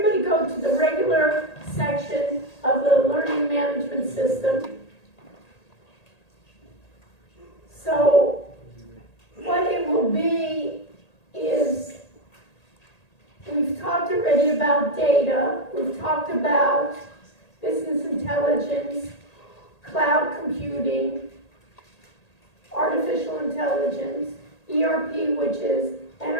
go to the regular section of the learning management system. So what it will be is, we've talked already about data, we've talked about business intelligence, cloud computing, artificial intelligence, ERP, which is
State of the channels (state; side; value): late; right; 1.8 ms